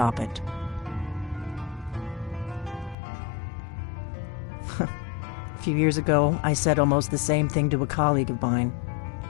it. A few years ago, I said almost the same thing to a colleague of mine.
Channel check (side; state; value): right; drops out; at 3.0 s